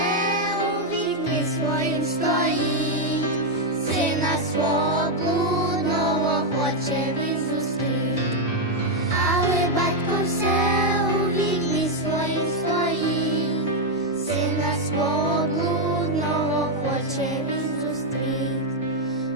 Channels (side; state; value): both; normal; correlation 0.01